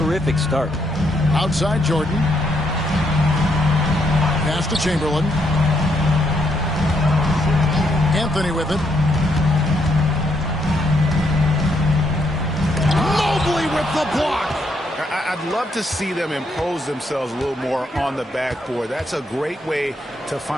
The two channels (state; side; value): normal; both; correlation 0.75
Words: start. Outside Jordan. Pass to Chamberlain. Anthony with it. Mobley with the block. I'd love to see them impose themselves a little more on the backboard. That's a great way to